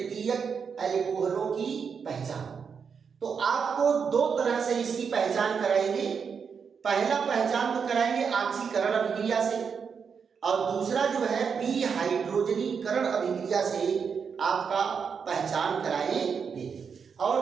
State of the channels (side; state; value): left; quieter; 6.3 dB